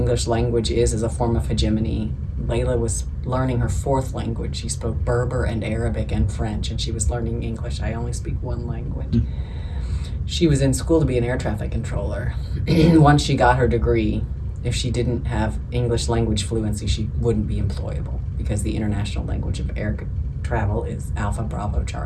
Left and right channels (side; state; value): both; identical; correlation 1.00